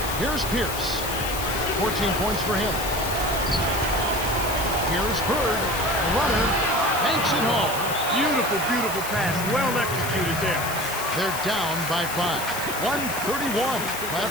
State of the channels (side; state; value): left; noise; hiss, 8 dB below the sound